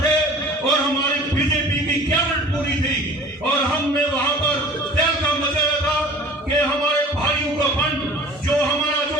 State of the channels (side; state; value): both; normal; correlation 0.44